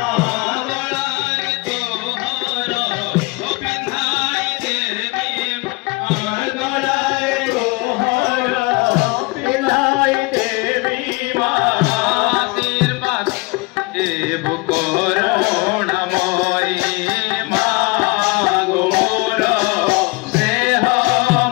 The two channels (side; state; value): right; quieter; 25.7 dB